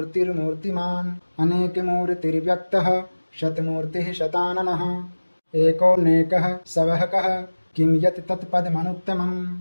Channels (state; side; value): inverted; both; correlation -1.00